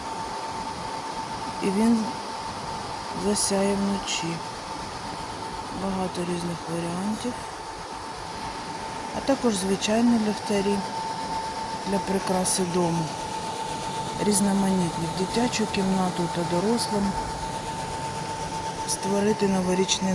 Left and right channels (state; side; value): identical; both; correlation 1.00